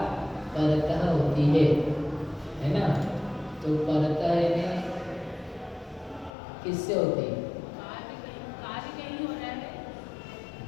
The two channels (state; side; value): drops out; right; at 6.3 s